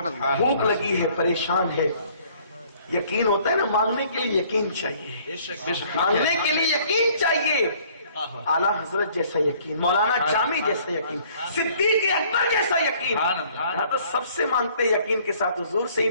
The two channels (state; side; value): inverted; both; correlation -0.58